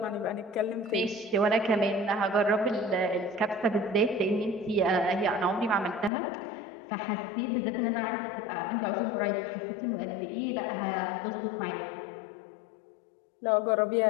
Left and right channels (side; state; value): right; drops out; at 6.1 s